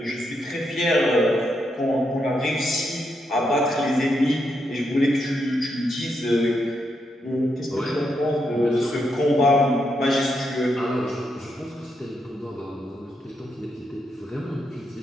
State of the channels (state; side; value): normal; both; correlation 0.81